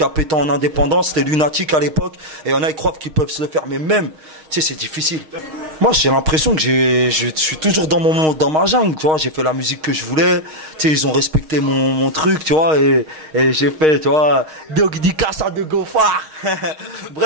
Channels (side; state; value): left; late; 6.4 ms